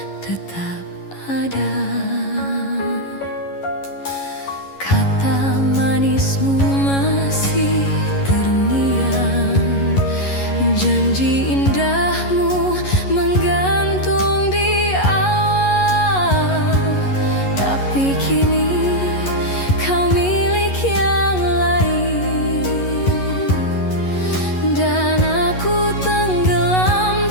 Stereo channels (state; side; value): late; right; 11 ms